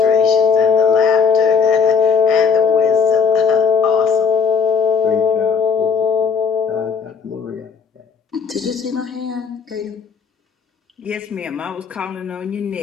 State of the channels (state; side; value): quieter; right; 6.1 dB